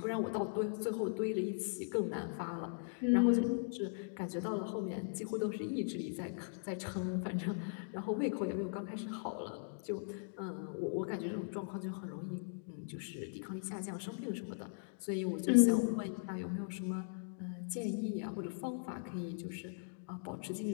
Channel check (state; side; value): silent; right; digital silence